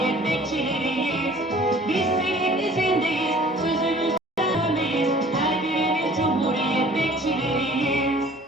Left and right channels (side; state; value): both; normal; correlation 0.51